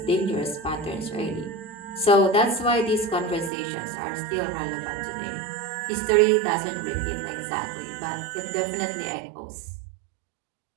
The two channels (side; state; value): left; drops out; at 3.5 s